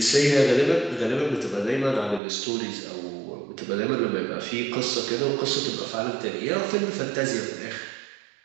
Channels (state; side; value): drops out; left; at 2.2 s